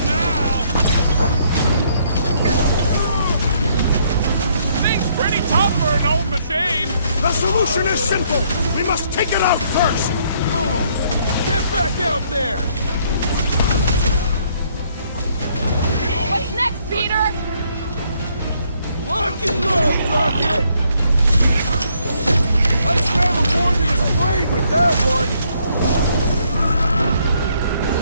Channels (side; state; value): both; inverted; correlation -0.69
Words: now! Thing's pretty tough for an old machine! The solution is simple! We must take it out first! Get back out there! What's next, Peter? Lock and load, Rocket! I scrambled more than his brain with that one!